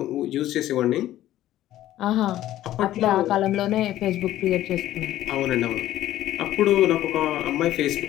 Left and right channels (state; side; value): quieter; right; 13.7 dB